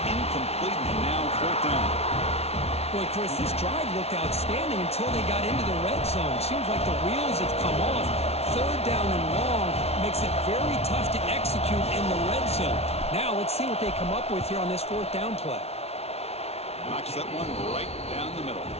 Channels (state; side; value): late; right; 0.30 ms